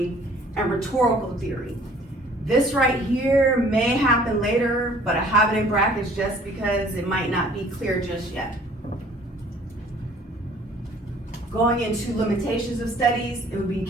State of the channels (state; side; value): normal; both; correlation 0.55